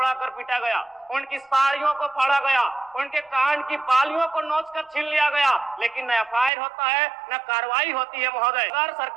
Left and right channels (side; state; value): left; drops out; at 6.5 s